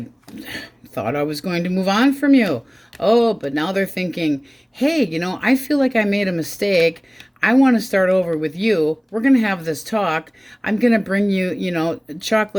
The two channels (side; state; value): both; identical; correlation 1.00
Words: thought I was going to move on from you. Oh, but now they're thinking, hey, you know, I feel like I made a mistake. I want to start over with you. We're going to have this talk. I'm going to bring you, you know,